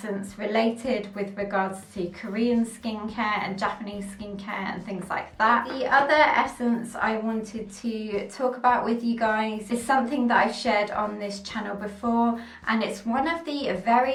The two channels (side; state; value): both; identical; correlation 1.00